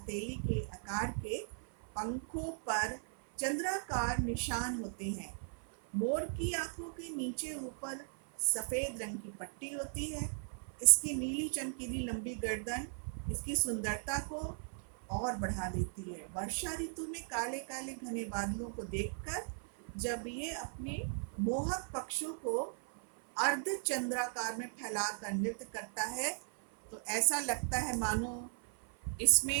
के आकार के पंखों पर चंद्राकार निशान होते हैं। मोर की आंखों के नीचे ऊपर सफेद रंग की पट्टी होती है। इसकी नीली चमकीली लंबी गर्दन इसकी सुंदरता को और बढ़ा देती है। वर्षा ऋतु में काले काले घने बादलों को देखकर जब ये अपने मोहक पक्षों को अर्ध चंद्राकार में फैलाकर नृत्य करता है तो ऐसा लगता है मानो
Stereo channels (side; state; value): left; silent; 53 dB below the other